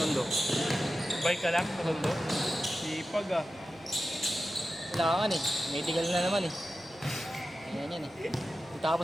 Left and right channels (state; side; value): noise; right; rumble, 27 dB below the sound